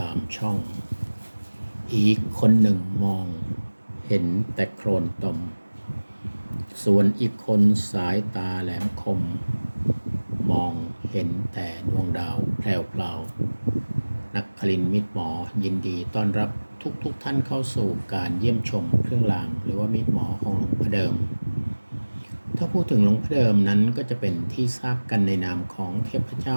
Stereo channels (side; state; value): both; inverted; correlation -1.00